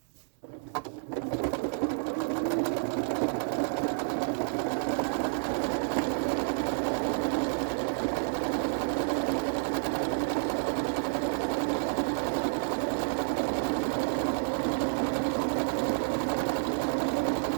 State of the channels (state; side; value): silent; left; 58 dB below the other